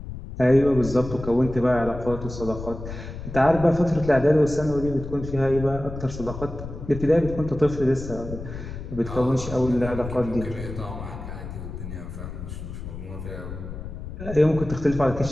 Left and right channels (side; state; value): left; noise; rumble, 9 dB below the sound